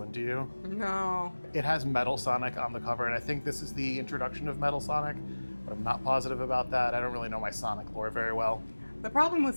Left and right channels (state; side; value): inverted; both; correlation -1.00